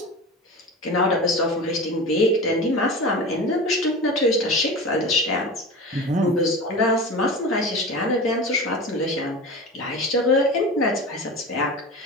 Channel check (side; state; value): both; normal; correlation 0.31